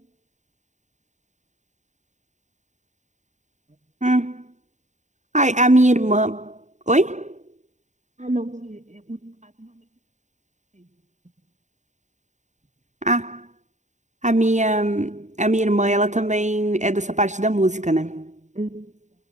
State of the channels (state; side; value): late; left; 0.34 ms